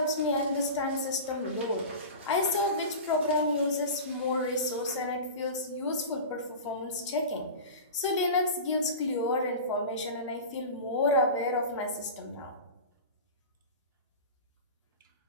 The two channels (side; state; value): both; inverted; correlation -0.30